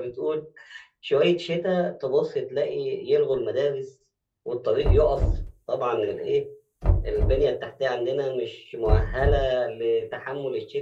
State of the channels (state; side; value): identical; both; correlation 1.00